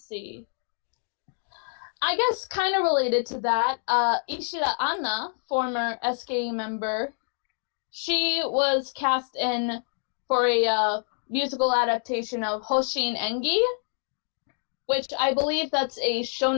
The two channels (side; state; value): right; silent; 55 dB below the other